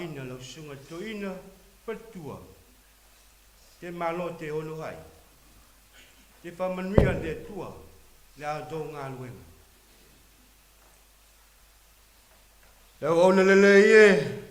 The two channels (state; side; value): identical; both; correlation 1.00